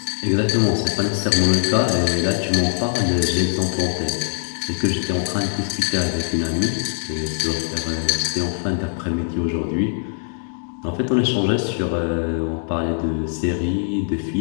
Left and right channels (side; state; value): right; silent; digital silence